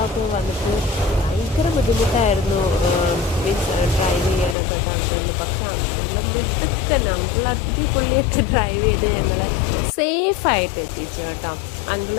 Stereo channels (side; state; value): right; drops out; at 4.5 s